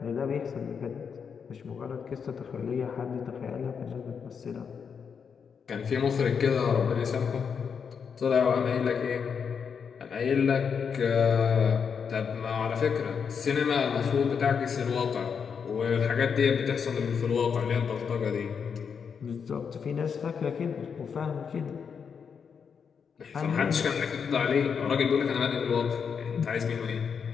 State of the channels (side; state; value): right; quieter; 6.5 dB